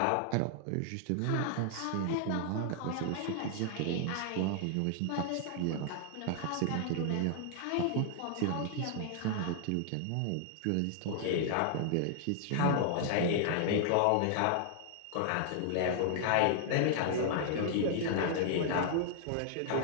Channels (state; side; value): different; both; correlation 0.00